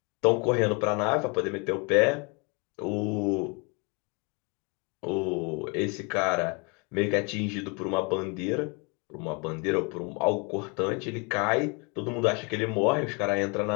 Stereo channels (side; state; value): right; quieter; 32.1 dB